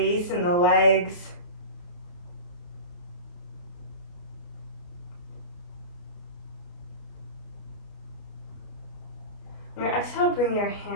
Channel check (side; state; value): right; late; 29 ms